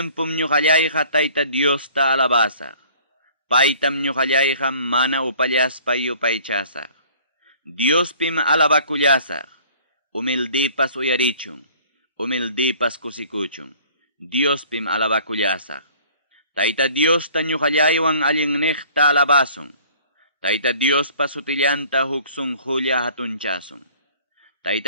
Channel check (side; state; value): both; inverted; correlation -0.52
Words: ñuqallayqa Tayta Diosta alabasaq. Paytam ñuqallayqa mana upallaspa yupaychasaq. Diospim alabakullasaq. Humildipas uyarichun. Humildipas kusikuchun. Diospim alabakullasaq. Tayta Diosta ñuqallaywan allinniqta alabasun. Tayta Diospa sutillanta huksun julia hatunchasun.